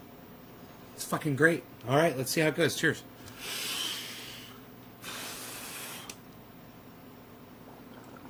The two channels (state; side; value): identical; both; correlation 1.00